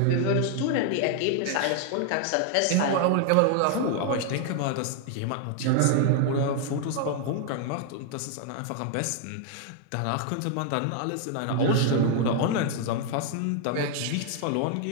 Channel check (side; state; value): both; different; correlation 0.00